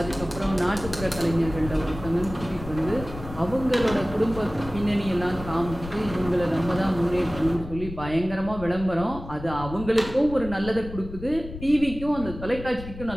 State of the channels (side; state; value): left; noise; rumble, 12 dB below the sound